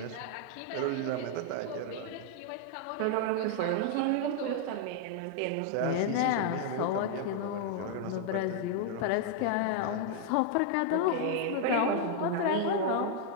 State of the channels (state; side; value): different; both; correlation 0.00